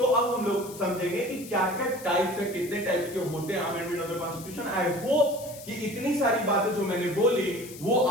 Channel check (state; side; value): noise; left; hiss, 16 dB below the sound